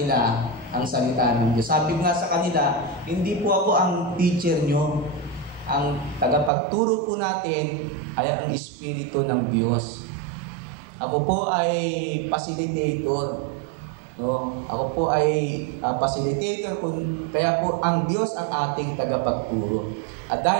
ang salita ng Diyos. Sabi nga sa kanila, hindi po ako ang teacher nyo. Ang tagapagturo po natin ay ang Espiritu ng Diyos. Ako po ay facilitator. No? Ako po ay facilitator, kaya po ang Diyos ang ating tagapagturo. At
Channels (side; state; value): left; drops out; at 6.5 s